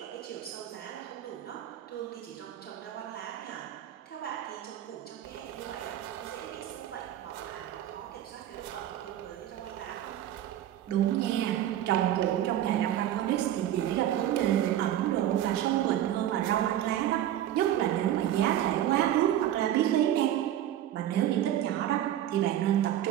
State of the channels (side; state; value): left; quieter; 12.0 dB